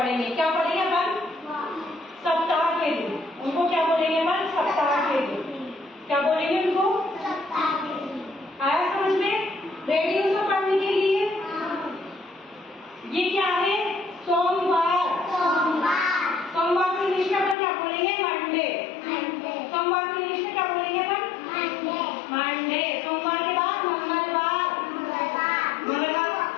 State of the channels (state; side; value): drops out; right; at 17.6 s